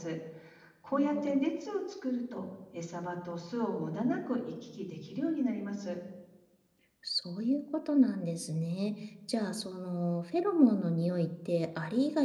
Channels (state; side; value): identical; both; correlation 1.00